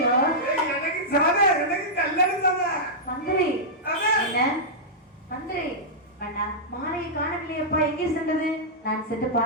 எனக்கு சாதா, எனக்கு கல்யாணம் சாதா. மந்திரி என்ன? மந்திரி அண்ணா, மாலையை காணவில்லையப்பா, எங்கே சென்றது? நான் சென்று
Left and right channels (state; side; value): normal; both; correlation -0.10